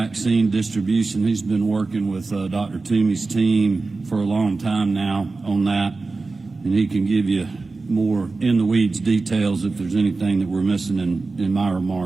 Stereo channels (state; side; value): quieter; left; 3.7 dB